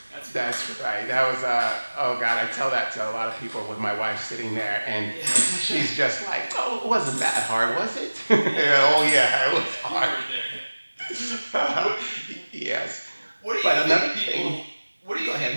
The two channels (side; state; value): both; inverted; correlation -1.00